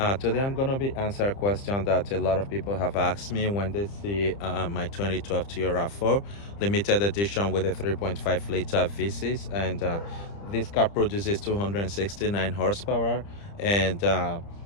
Today I'm going to be answering a question that a lot of people have asked me when they see my 2012 Toyota RAV4 limited edition with a 3.5 liter V6, and this car produces 269 horsepower and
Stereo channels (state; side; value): late; right; 30 ms